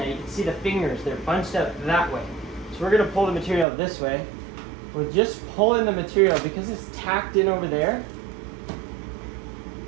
you can see the fingers, they're bunched up that way. So we're going to pull the material this way. We're just pulling the material because it's tacked in over there.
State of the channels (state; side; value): drops out; left; at 3.7 s